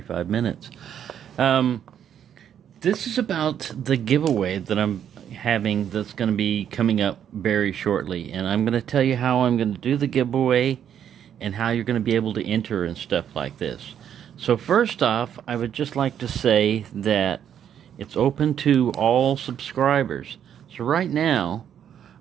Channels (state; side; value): quieter; left; 9.3 dB